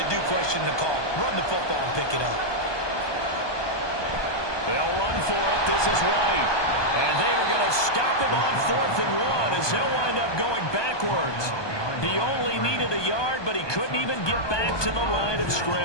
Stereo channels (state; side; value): late; right; 1.2 ms